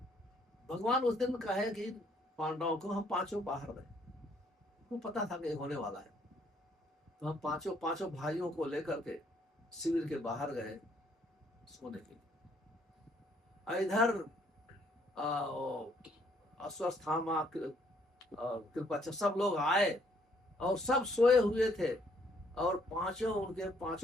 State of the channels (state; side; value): normal; both; correlation 0.67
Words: भगवान उस दिन कहे कि पांडवों को हम पांचों बाहर रहे, उनको पता था कि होने वाला है। तो हम पांचों भाइयों को लेकर के शिविर के बाहर गए सोने के लिए। इधर अश्वत्थामा, कृपाचार्य, सब लोग आए और सब सोए हुए थे। और पांचों